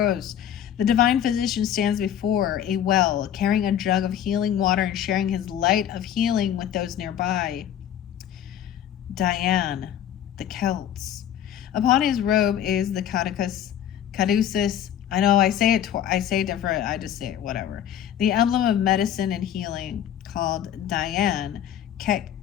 The Divine Physician stands before a well, carrying a jug of healing water and sharing his light of healing with those nearby. Diane, the Celts. Upon his robe is the caduceus. I know I say it. I say it different. I just say it. Whatever. The emblem of medicine and healing, called Diane,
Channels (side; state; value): right; quieter; 10.3 dB